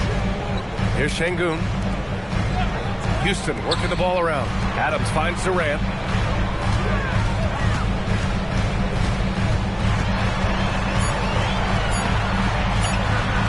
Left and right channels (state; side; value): identical; both; correlation 1.00